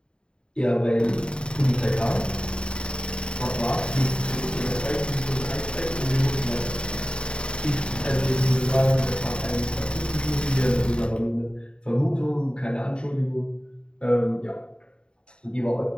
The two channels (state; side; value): late; right; 0.051 ms